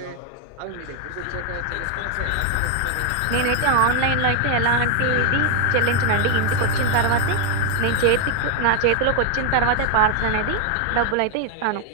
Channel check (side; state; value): both; different; correlation 0.01